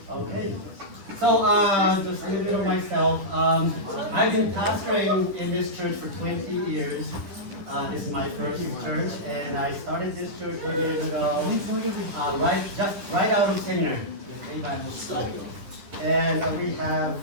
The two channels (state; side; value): late; left; 10 ms